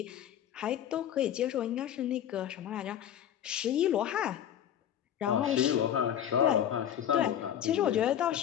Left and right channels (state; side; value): quieter; right; 10.2 dB